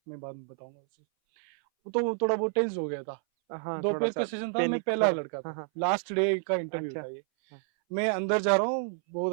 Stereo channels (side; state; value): left; silent; 58 dB below the other